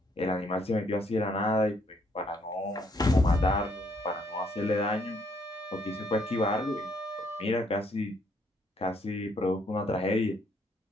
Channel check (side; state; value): both; normal; correlation 0.69